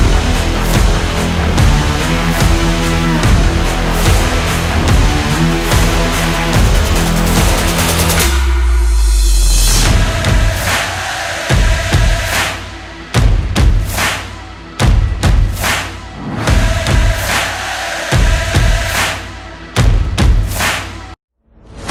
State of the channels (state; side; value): identical; both; correlation 1.00